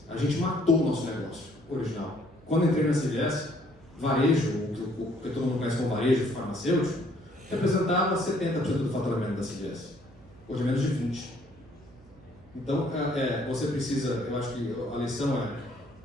A gente matou o nosso negócio original. Quando entrei na CVS, varejo, o que todo mundo conhece como varejo farmacêutico, representava 70% do faturamento da CVS. Hoje é menos de 20%. Então, você precisa, eu acho que a lição é,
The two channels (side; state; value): right; noise; hum, 24 dB below the sound